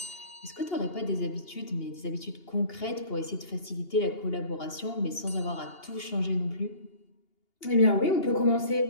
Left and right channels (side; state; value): right; late; 2.8 ms